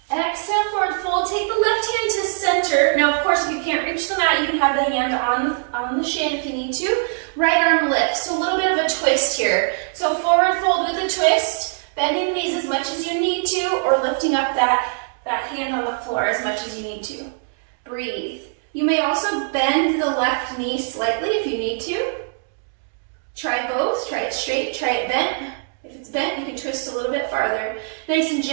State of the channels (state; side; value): silent; left; digital silence